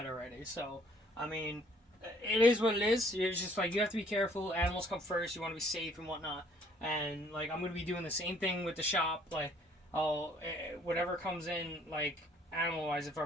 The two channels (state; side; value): normal; both; correlation 0.61